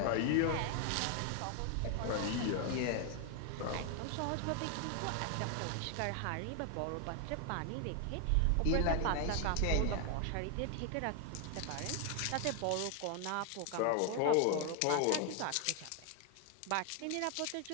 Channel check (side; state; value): both; different; correlation 0.00